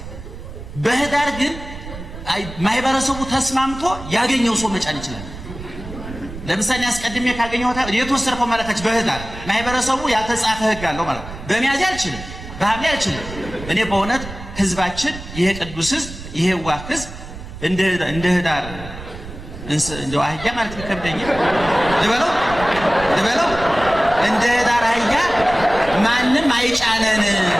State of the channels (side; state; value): right; noise; rumble, 12 dB below the sound